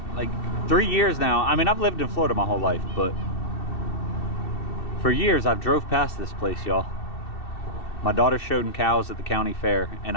like 3 years now, I mean, I've lived in Florida my whole life, but for years I've drove past this place, y'all. My daughter showed cows at the county fair, and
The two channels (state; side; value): late; right; 2.7 ms